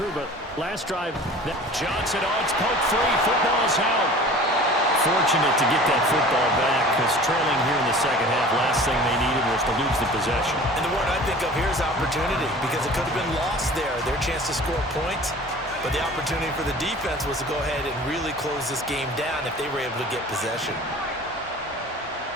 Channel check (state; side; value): normal; both; correlation 0.43